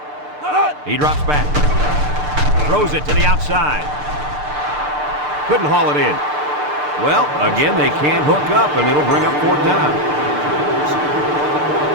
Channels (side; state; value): left; late; 6.7 ms